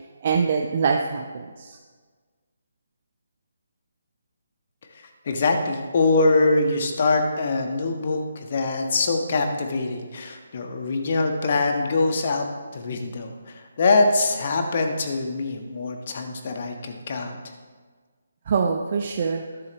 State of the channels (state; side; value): inverted; both; correlation -0.77